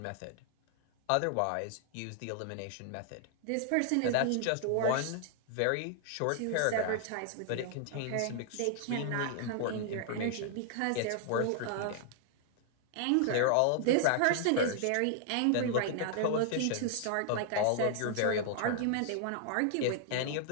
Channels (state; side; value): different; both; correlation 0.00